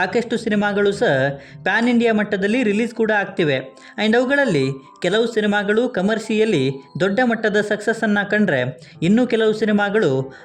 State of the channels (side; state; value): both; identical; correlation 1.00